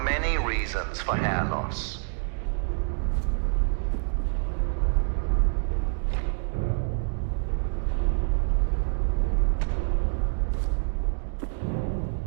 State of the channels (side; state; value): left; silent; digital silence